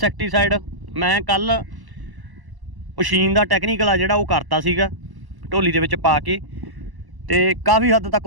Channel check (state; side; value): late; left; 1.1 ms